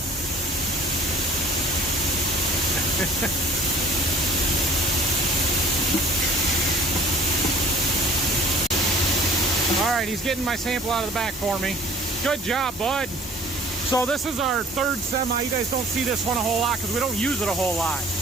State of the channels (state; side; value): normal; both; correlation 0.50